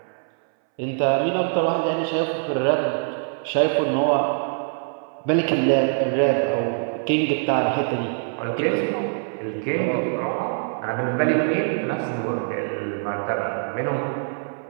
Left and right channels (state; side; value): silent; left; 61 dB below the other